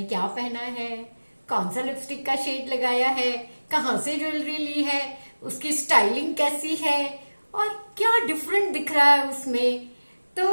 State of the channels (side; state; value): both; inverted; correlation -1.00